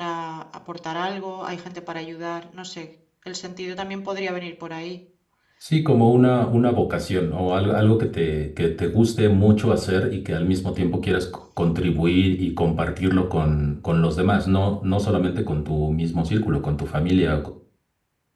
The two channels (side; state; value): both; identical; correlation 1.00